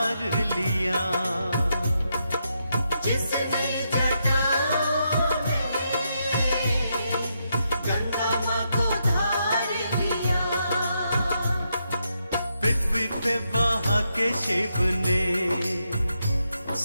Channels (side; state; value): both; inverted; correlation -0.81